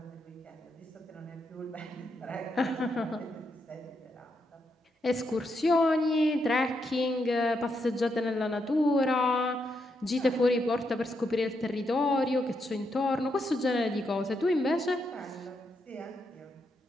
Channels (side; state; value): both; normal; correlation 0.81